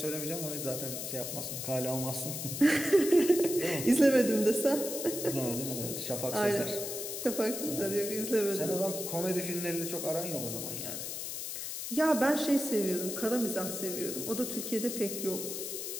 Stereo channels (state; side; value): noise; left; hiss, 5 dB below the sound